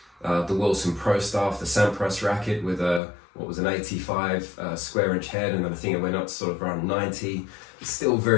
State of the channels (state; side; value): drops out; right; at 3.0 s